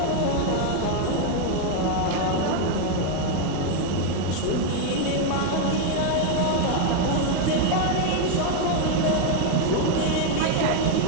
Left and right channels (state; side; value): different; both; correlation 0.01